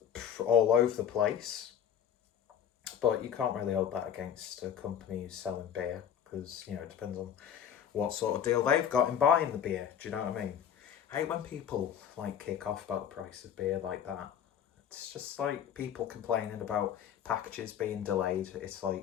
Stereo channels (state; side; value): quieter; right; 9.1 dB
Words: all over the place, but you can't really hold that against a company who's selling beer, because it depends on what sort of deal they've got in buying the beer. Do you know what I mean? I hate when people kick off about the price of beer like that. It's just like people complaining about packages being delayed. It's